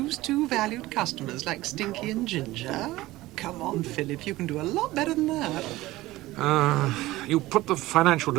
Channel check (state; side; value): quieter; left; 17.9 dB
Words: 2 valued customers like Stinky and Ginger? Come on, Philip, you can do a lot better than that. You put the financial